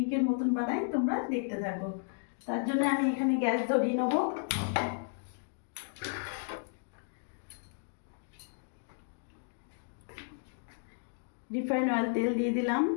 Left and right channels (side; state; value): right; silent; digital silence